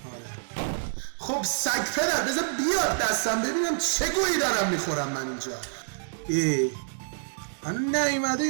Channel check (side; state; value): left; silent; digital silence